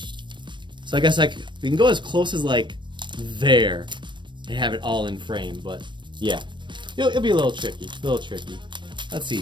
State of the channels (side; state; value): left; late; 0.22 ms